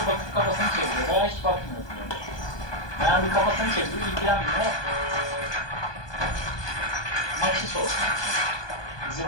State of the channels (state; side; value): late; right; 1.2 ms